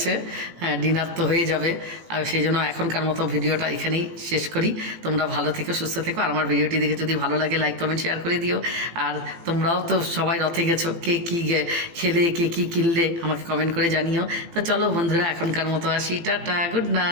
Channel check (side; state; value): left; late; 18 ms